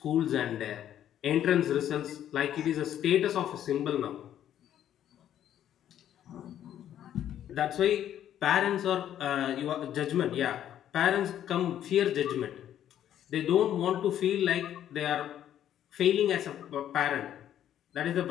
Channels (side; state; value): right; quieter; 10.8 dB